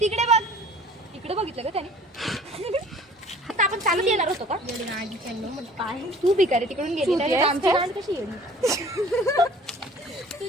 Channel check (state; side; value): normal; both; correlation 0.50